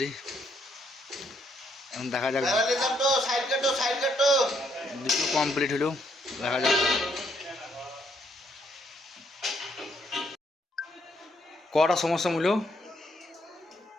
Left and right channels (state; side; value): normal; both; correlation 0.72